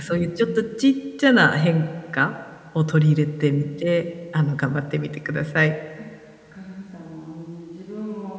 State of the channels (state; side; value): identical; both; correlation 1.00